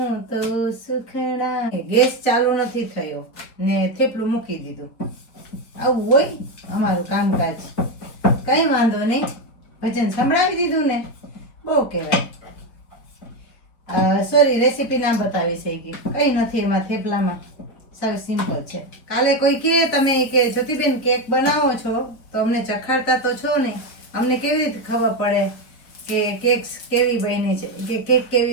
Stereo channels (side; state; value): right; late; 4.9 ms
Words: તો સુખડા. ગેસ ચાલુ નથી થયો ને થેપલું મૂકી દીધું. આવું હોય અમારું કામકાજ. કઈ વાંધો નહીં, ભજન સંભળાવી દીધું ને, બહુ કહેવાય. સોરી, રેસીપી ના બતાવી શકી, કઈ નથી એમાં થેપલામાં, સાવ સિમ્પલ છે. કાલે કોઈ કહે તમે કે જ્યોતિબેન કેક બનાવો છો તો અમને ચખાડતા તો છો નહીં, અમને કેવી રીતે ખબર પડે કે કેક કેવી બની છે, કે કેક